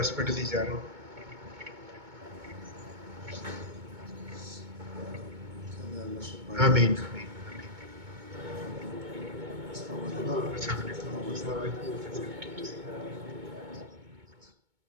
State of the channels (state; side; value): late; left; 2.2 ms